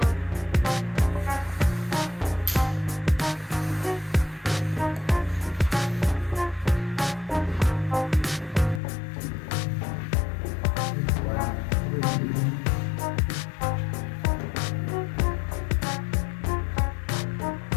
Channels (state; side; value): drops out; right; at 8.8 s